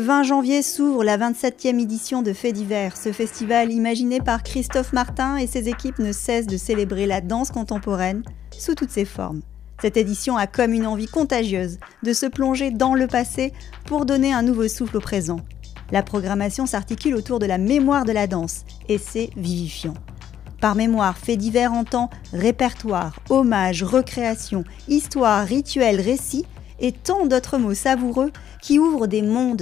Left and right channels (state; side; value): quieter; right; 10.1 dB